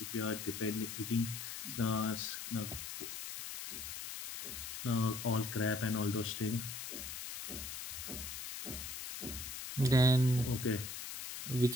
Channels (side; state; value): left; noise; hiss, 7 dB below the sound